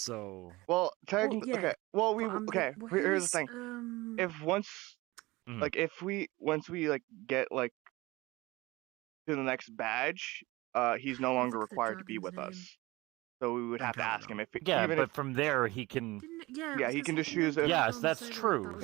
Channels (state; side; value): quieter; left; 20.9 dB